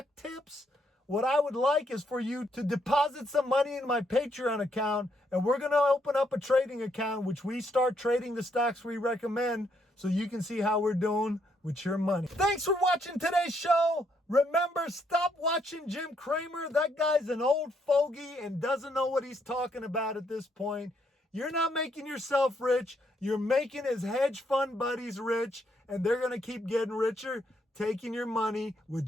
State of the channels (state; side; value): normal; both; correlation 0.74